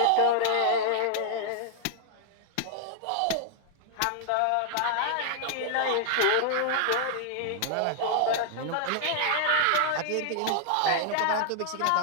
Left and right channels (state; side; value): different; both; correlation -0.01